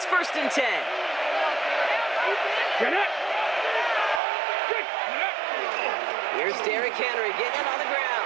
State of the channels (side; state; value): left; drops out; at 4.2 s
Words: first and 10. Here's Derrick Henry getting it on the